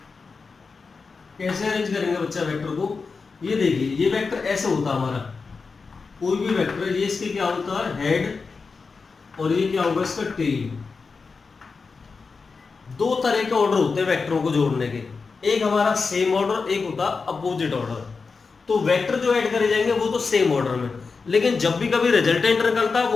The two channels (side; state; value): right; quieter; 4.7 dB